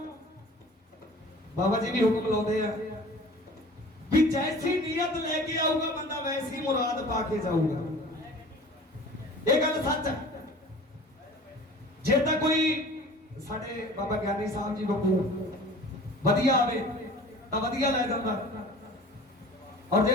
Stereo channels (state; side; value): normal; both; correlation 0.44